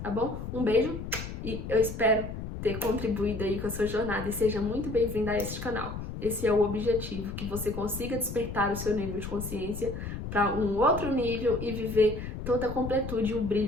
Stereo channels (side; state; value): left; noise; rumble, 7 dB below the sound